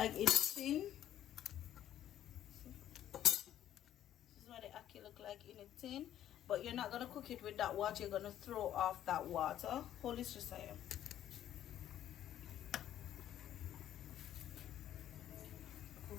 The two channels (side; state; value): right; quieter; 11.5 dB